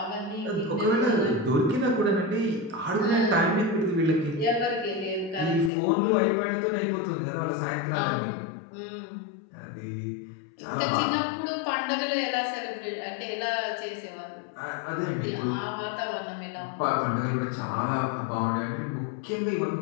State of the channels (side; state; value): right; drops out; at 5.7 s